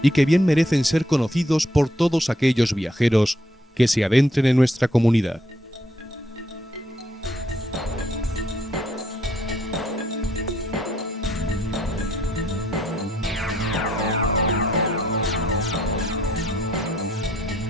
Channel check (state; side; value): normal; both; correlation 0.71